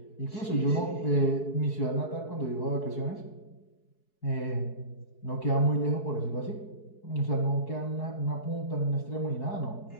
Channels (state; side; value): late; right; 4.7 ms